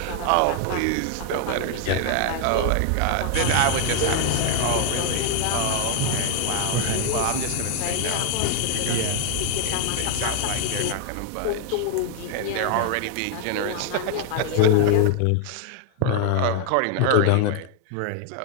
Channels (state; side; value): different; both; correlation 0.00